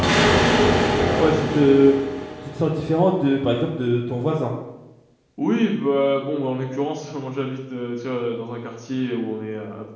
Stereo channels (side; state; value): both; identical; correlation 1.00